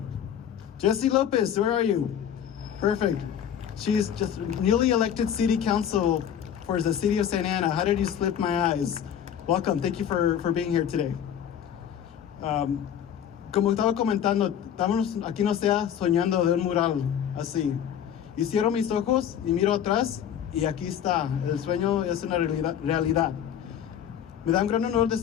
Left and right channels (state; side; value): quieter; right; 9.3 dB